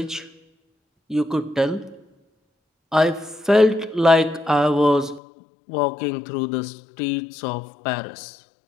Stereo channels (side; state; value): right; drops out; at 5.2 s